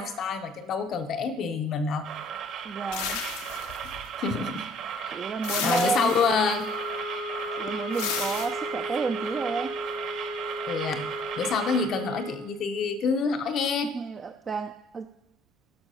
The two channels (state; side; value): normal; both; correlation 0.58